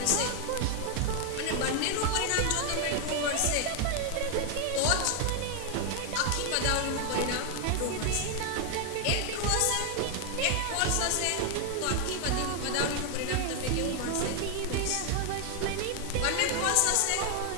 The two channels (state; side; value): different; both; correlation 0.01